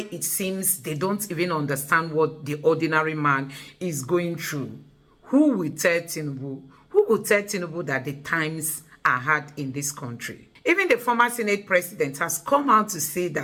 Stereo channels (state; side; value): identical; both; correlation 1.00